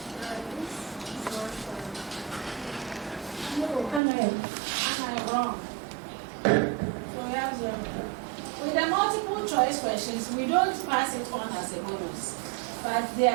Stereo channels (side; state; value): left; drops out; at 4.0 s